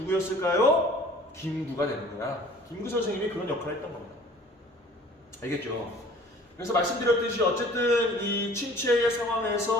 김구가 되는 거야. 김구 선생님이 그런 역할을 했던 겁니다. 알겠죠? 그래서 말씀드렸듯이 어쨌든 이 침체의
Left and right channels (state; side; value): normal; both; correlation 0.49